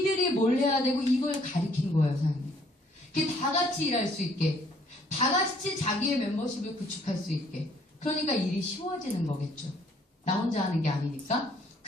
뭘 해야 되고 이걸 가리킨 거예요, 사장님. 그게 다 같이 일할 수 있게, 다 같이 자기의 멤버십을 구축할 수 있게. 그러니까 일이 쉬워지는 거겠죠. 나 혼자 하는 게 아니니까.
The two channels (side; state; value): both; normal; correlation 0.63